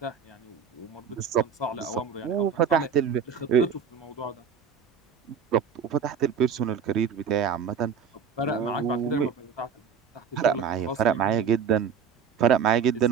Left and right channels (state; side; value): quieter; left; 6.9 dB